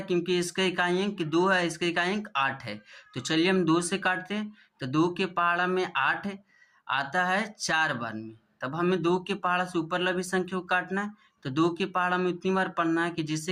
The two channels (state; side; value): identical; both; correlation 1.00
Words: क्योंकि इसका इकाई अंक 2 है, इसका इकाई अंक 8 है। तो चलिए हम 2 से काटते हैं। तो 2 के पहाड़ा में 8 आता है 4 बार में। तब हमें 2 के पहाड़ा से ऊपर लगी संख्या को काटना है। तो 2 के पहाड़ा में उतनी बार पढ़ना है कि